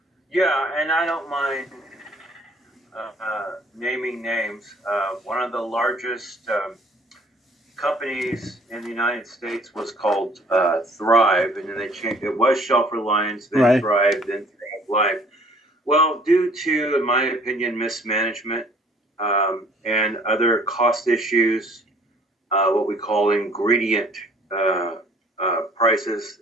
Yeah, and I don't mind naming names. One of the largest companies in the United States was called Thrive, and then they changed. It was Shelf Reliance, then Right. Thrive, then Thrive Life. Well, due to, in my opinion, mismanagement and other cost issues, what we call ingredient prices,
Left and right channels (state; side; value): normal; both; correlation 0.56